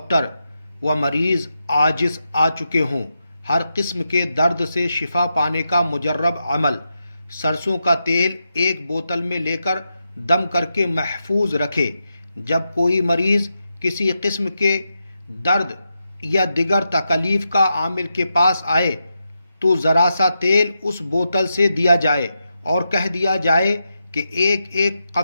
و مریض عاجز آ چکے ہوں، ہر قسم کے درد سے شفا پانے کا مجرب عمل، سرسوں کا تیل ایک بوتل میں لے کر دم کر کے محفوظ رکھے۔ جب کوئی مریض کسی قسم کے درد یا دیگر تکلیف کا عامل کے پاس آئے تو ذرا سا تیل اس بوتل سے دیا جائے اور کہہ دیا جائے کہ ایک ایک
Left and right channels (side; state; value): both; inverted; correlation -0.87